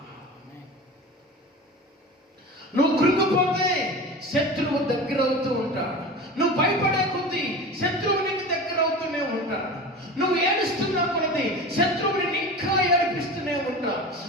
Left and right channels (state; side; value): normal; both; correlation 0.32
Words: నువ్వు కృంగిపోతే శత్రువు దగ్గర అవుతూ ఉంటాడు. నువ్వు భయపడే కొద్దీ శత్రువు నీకు దగ్గర అవుతూనే ఉంటాడు. నువ్వు ఏడుస్తున్నా కొలది శత్రువుని ఇంకా ఏడిపిస్తూనే ఉంటావు.